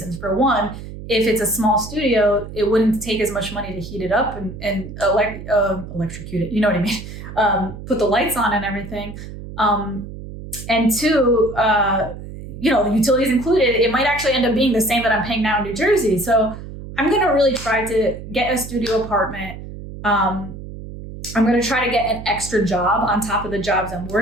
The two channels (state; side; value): noise; right; hum, 12 dB below the sound